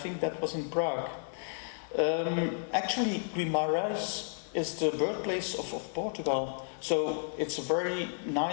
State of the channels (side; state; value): right; silent; digital silence